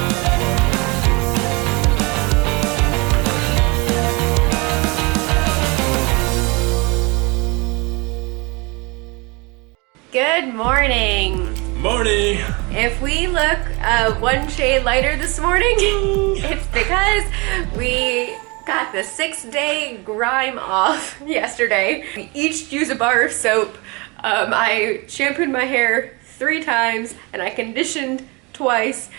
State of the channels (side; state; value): left; quieter; 27.8 dB